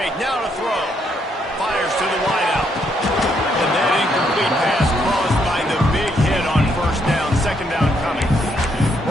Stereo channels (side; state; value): both; normal; correlation 0.74